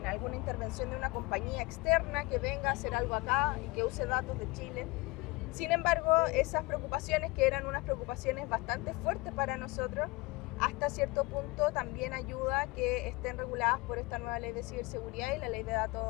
alguna intervención de una compañía externa que venga a hacer algo acá y que use datos de Chile. Sin embargo, esas preocupaciones, que eran unas preocupaciones bastante fuertes para nosotros, hasta cierto punto también ayuda a que estén reguladas por esta nueva ley de ciberseguridad y la ley de datos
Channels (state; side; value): quieter; right; 23.0 dB